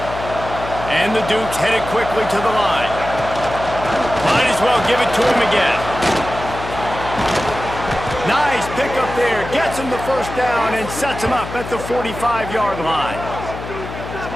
And the Dukes headed quickly to the line. Might as well give it to him again. Nice pickup there. Gets him the first down and sets him up at the 45-yard line.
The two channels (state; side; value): noise; left; hum, 10 dB below the sound